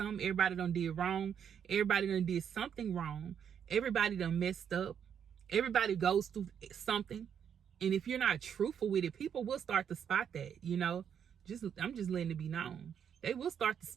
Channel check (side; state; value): left; quieter; 8.2 dB